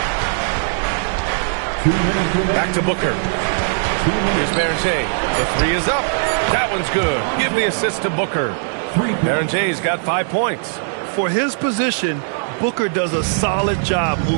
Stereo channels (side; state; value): left; silent; digital silence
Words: Back to Booker. Here's Berenger. The 3 is up. That one's good. Give the assist to Booker. Berenger's got 5 points. For his position, Booker does a solid job